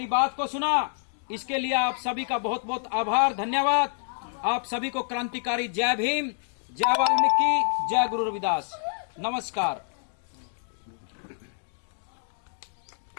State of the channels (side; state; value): right; silent; digital silence